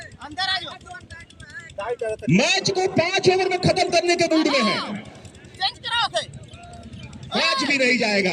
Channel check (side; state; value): both; identical; correlation 1.00